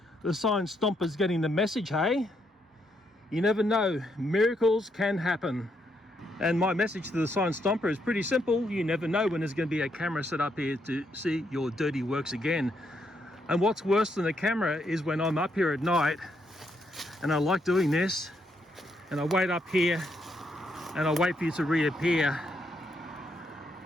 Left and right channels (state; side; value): normal; both; correlation 0.77